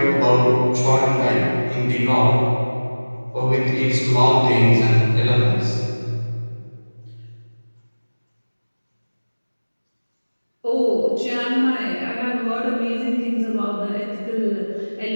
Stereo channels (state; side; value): inverted; both; correlation -1.00